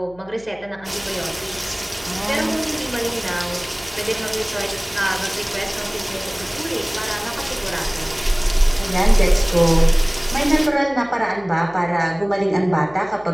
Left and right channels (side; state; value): left; noise; hum, 24 dB below the sound